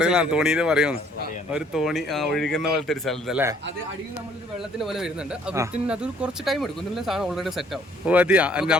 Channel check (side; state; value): both; normal; correlation 0.61